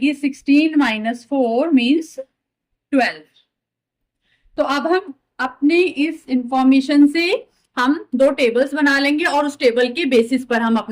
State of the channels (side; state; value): both; identical; correlation 1.00